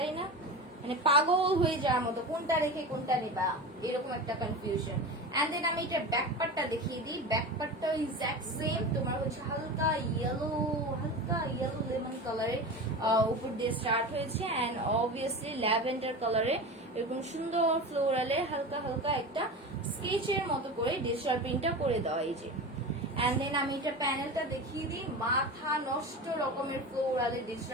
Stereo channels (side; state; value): both; normal; correlation 0.28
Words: না? মানে পাগল হয়ে যাওয়ার মতো, কোনটা রেখে কোনটা নেবা এরকম একটা কনফিউশন। এন্ড দেন আমি এটার ব্যাক পার্টটা দেখিয়ে দিই। ব্যাক পার্টটা এক্সাক্ট সেম, তোমার হচ্ছে হালকা ইয়েলো লেমন কালারের উপর দিয়ে স্টার্ট হয়েছে। এন্ড অবভিয়াসলি ল্যাভেন্ডার কালারে এরকম সুন্দর ফ্লোরালে হালকা হালকা একটা স্কেচের মতো করে ডিজিটাল প্রিন্টটা করে দেওয়া। এই যে এন্ড দেন আমি এটা প্যানেলটা দেখিয়ে দিই। মাথা নষ্ট রকমের ফ্লোরালে